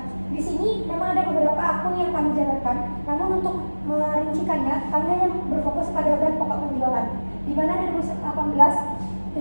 di sini memang ada beberapa akun yang kami jabarkan, namun untuk merincikannya kami hanya berfokus pada beban pokok penjualan, di mana dari 2018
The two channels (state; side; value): inverted; both; correlation -1.00